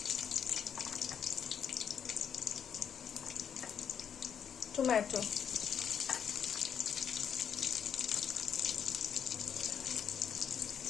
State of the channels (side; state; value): right; quieter; 7.9 dB